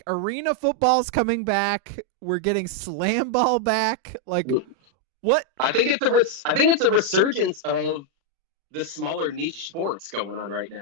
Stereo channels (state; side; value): late; left; 36 ms